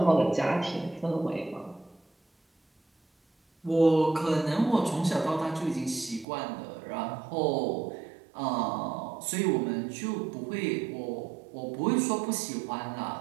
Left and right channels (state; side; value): drops out; left; at 6.2 s